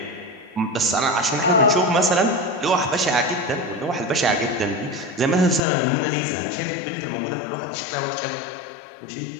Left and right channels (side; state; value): right; drops out; at 5.6 s